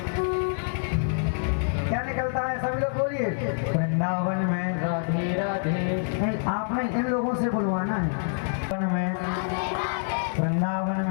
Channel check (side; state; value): right; silent; 59 dB below the other